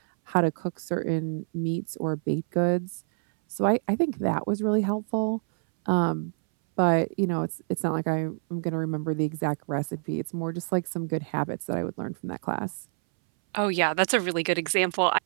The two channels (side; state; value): left; silent; 60 dB below the other